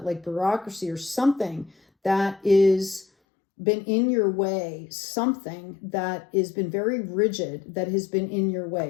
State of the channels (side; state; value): right; drops out; at 3.1 s